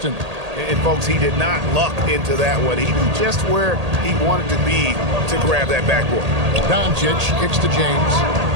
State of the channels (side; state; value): left; late; 1.8 ms